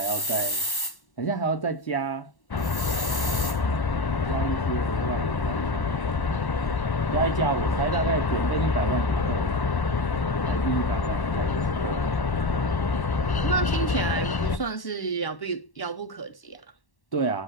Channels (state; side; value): late; right; 1.1 ms